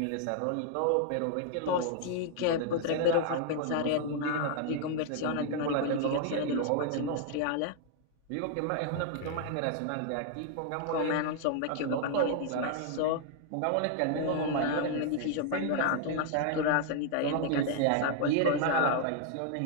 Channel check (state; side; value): different; both; correlation 0.00